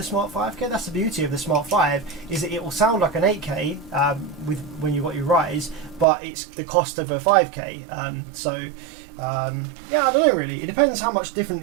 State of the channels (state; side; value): drops out; left; at 6.1 s